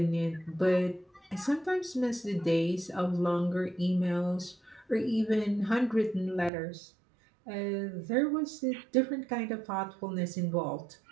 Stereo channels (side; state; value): left; drops out; at 6.5 s